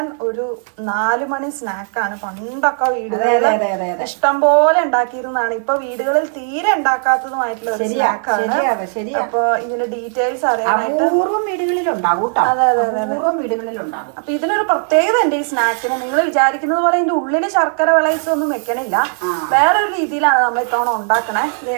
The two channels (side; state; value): left; silent; 57 dB below the other